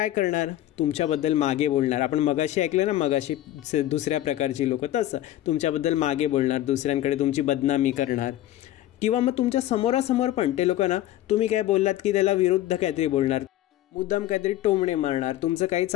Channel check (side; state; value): right; quieter; 13.8 dB